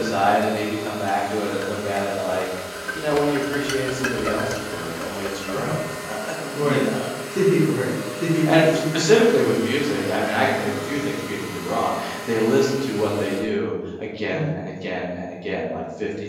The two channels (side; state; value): both; identical; correlation 1.00